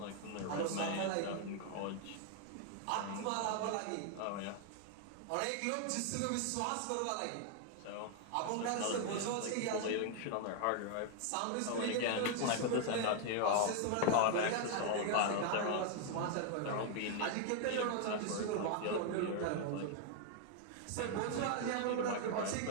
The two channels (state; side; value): different; both; correlation 0.00